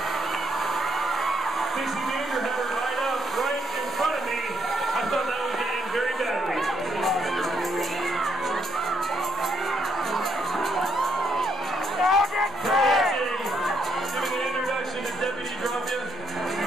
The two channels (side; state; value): both; normal; correlation 0.75